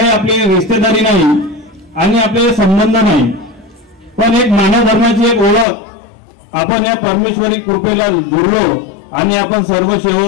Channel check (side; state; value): right; drops out; at 5.7 s